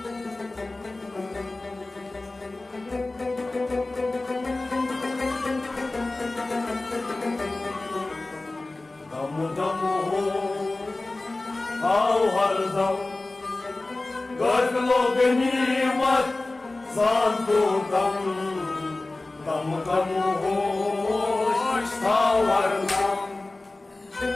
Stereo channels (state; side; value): quieter; right; 3.0 dB